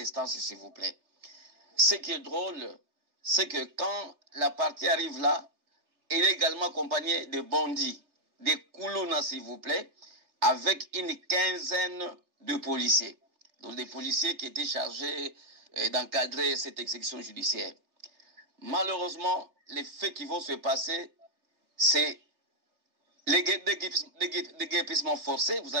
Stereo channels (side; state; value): left; late; 3.3 ms